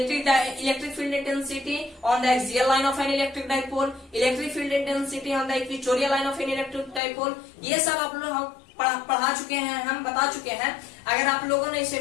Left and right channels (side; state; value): right; drops out; at 7.0 s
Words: field intensity on the axial line of N electric dipole, electric field intensity on the equatorial line of N electric dipole. ये सब आप लोग पढ़ा चुके हैं, हम बता चुके हैं। अगर आप लोगों ने इसे